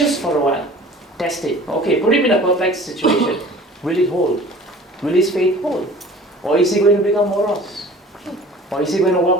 for a while. Test it. Okay, put him in a perplexed situation. Will it hold? Will his faith hold? Or is he going to become morose? Or is he going to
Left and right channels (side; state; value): both; normal; correlation 0.46